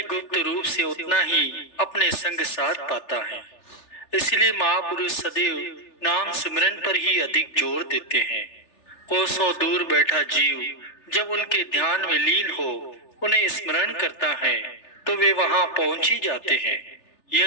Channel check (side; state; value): right; late; 3.4 ms